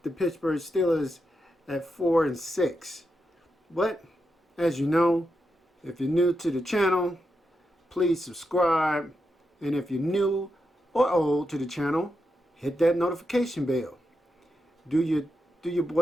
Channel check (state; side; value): normal; both; correlation 0.86